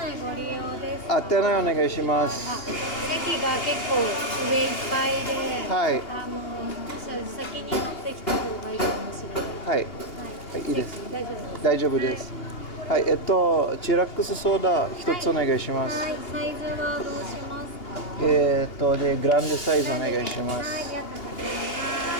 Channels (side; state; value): right; late; 2.8 ms